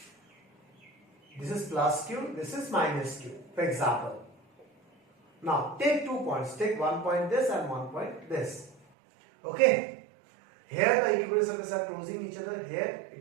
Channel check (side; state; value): left; drops out; at 8.8 s